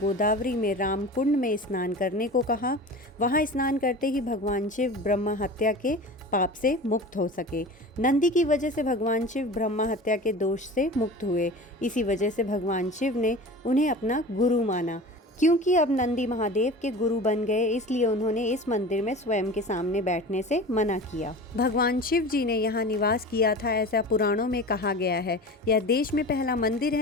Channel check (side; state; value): both; normal; correlation 0.35